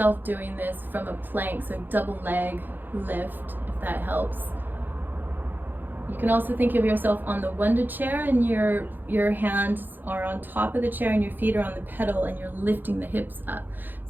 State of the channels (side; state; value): left; late; 0.090 ms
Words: doing this from a plank, so double leg lift, if that helps. You can also think of yourself on the Wunda chair, and your hands are on top of the chair and your feet are on the pedal, and you're lifting the hips up.